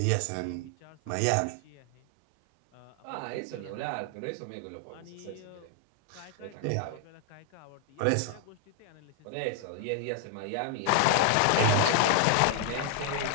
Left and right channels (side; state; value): both; different; correlation 0.00